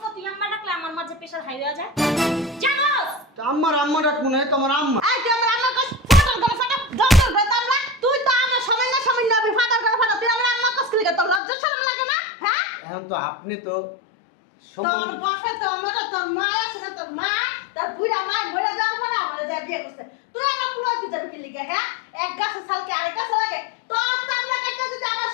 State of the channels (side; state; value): right; drops out; at 11.4 s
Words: না তুই আম্মা ডাকলে আমার মাঝে প্রেসার হাই হয়ে যায় জানোস? আম্মার আম্মা ডাকবো না তোমার আম্মা এই তুই আমার আম্মা কস ফাটার করে ফাটা জঙ্গল করে তামলা তুই তো আমার সময় না আমি ফাটার করে ফাটা তুই আমার আম্মা কস কি লিগা তোর লজ্জা শরম লাগে না হ্যাঁ এখন তো আপনি তো তোর বাপে তো আমার তোর মা আছে না তোর মা তার বুড়া মা মরে যাওয়ার পরে আমার যা বিয়ে করছে তুই আমার পোলা হইতে যাবে কি লিখে হ্যাঁ এক গাছে সালকে আরেক গাছে লাগে তোর চামড়া কাটতে যদি আমার